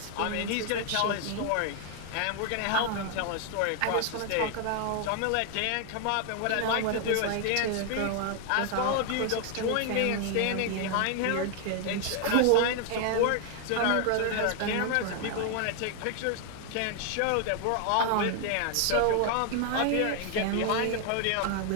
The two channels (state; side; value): different; both; correlation 0.00